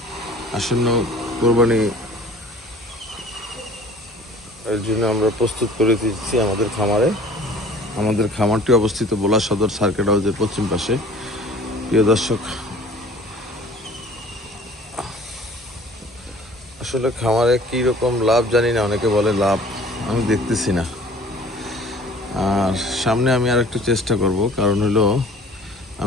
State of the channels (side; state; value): both; normal; correlation 0.49